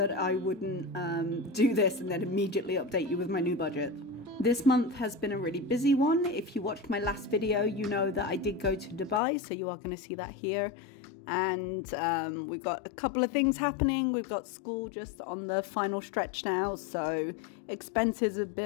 I wouldn't do this and then immediately update you with my new budget. This month has been a really busy one. If you watched my last video, you know that I did go to Dubai, so you are going to see that here. And we've got a couple of things happening. We've got school just on the final stretch now, so expenses have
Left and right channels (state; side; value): drops out; right; at 9.2 s